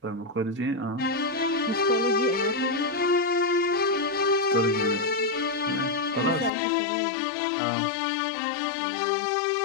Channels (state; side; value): drops out; right; at 6.5 s